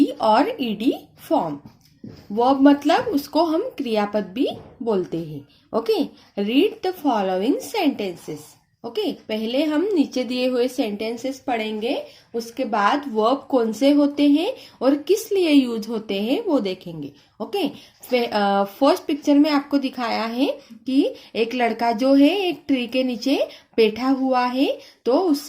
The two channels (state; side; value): identical; both; correlation 1.00